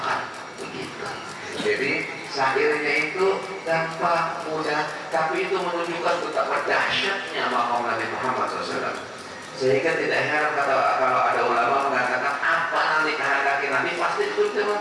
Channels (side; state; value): both; identical; correlation 1.00